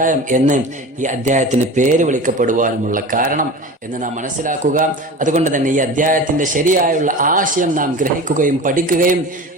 എന്ന് ഈ അധ്യായത്തിന് പേര് വിളിക്കപ്പെടുവാനുമുള്ള കാരണം എന്ന് നാം മനസ്സിലാക്കുക. അതുകൊണ്ട് തന്നെ ഈ അധ്യായത്തിന്റെ ശരിയായുള്ള ആശയം നാം ഗ്രഹിക്കുകയും പഠിക്കുകയും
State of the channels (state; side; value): normal; both; correlation 0.33